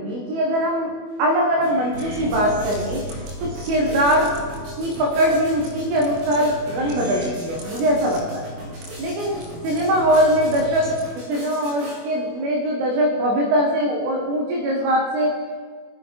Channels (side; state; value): left; late; 24 ms